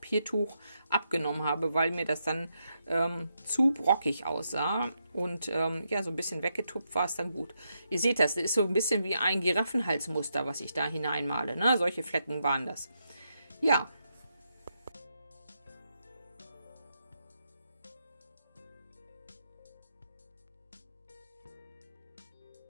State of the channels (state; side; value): inverted; both; correlation -0.82